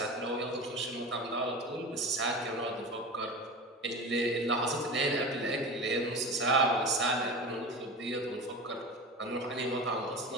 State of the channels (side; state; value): both; normal; correlation 0.30